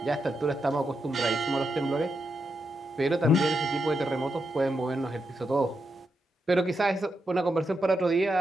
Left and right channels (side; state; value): both; normal; correlation 0.84